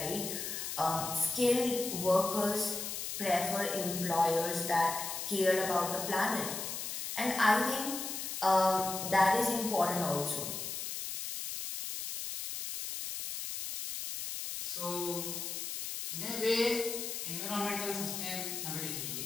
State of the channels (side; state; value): left; noise; hiss, 5 dB below the sound